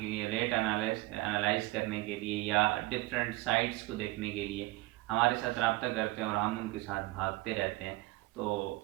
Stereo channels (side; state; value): left; quieter; 21.0 dB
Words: लिए, रेट एनालाइज करने के लिए या डिफरेंट साइट्स को देखने के लिए हमारे साथ रब्ता करते हैं और हम उनके साथ भागते रहते हैं। तो